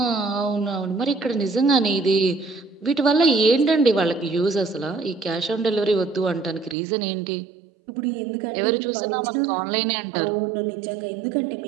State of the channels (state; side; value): drops out; left; at 6.8 s